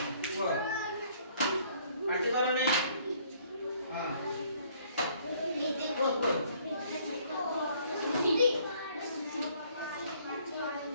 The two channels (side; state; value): both; inverted; correlation -0.62